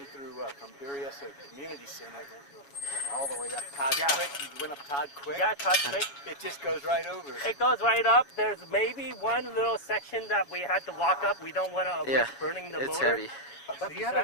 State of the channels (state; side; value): late; right; 7.2 ms